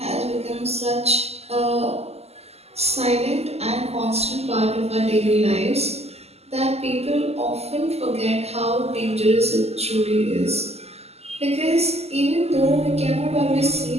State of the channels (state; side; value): late; left; 0.30 ms